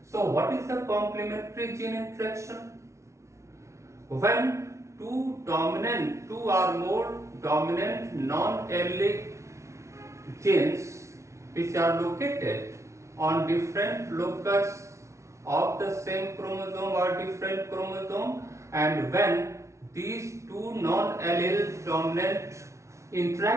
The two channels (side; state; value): left; late; 0.14 ms